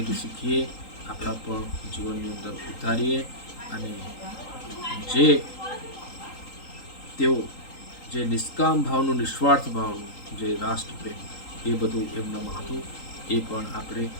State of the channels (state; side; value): late; right; 3.8 ms